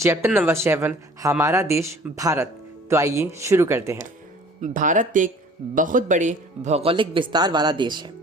number 7 हमारा देश भारत। तो आइए शुरू करते हैं। भारत एक बहुत बड़े भौगोलिक विस्तार वाला देश है।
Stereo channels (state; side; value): normal; both; correlation 0.50